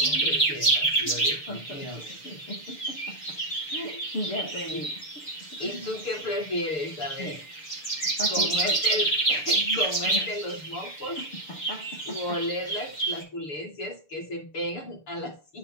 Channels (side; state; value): right; late; 6.8 ms